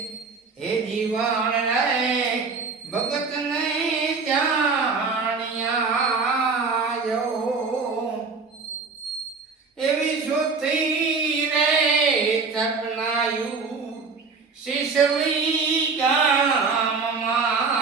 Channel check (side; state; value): left; quieter; 4.7 dB